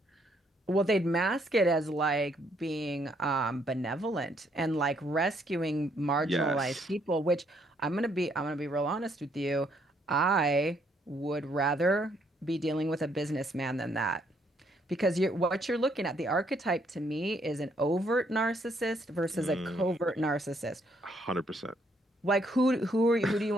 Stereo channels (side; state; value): both; normal; correlation 0.70